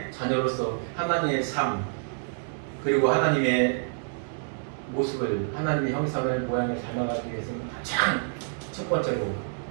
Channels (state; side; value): silent; left; digital silence